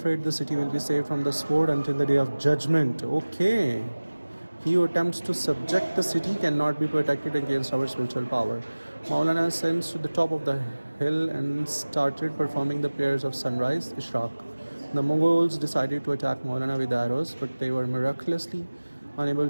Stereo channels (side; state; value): both; inverted; correlation -1.00